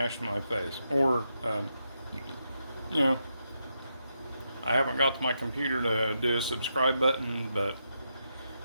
my face. Or, I haven't got to my computer to do a subscribe button, but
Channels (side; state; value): both; inverted; correlation -0.83